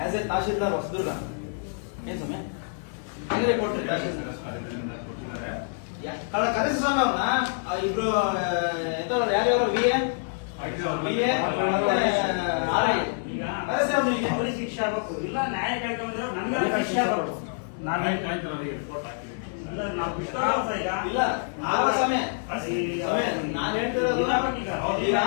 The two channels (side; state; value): right; silent; digital silence